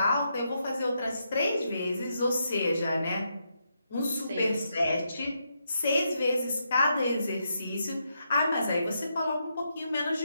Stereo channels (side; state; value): both; inverted; correlation -0.81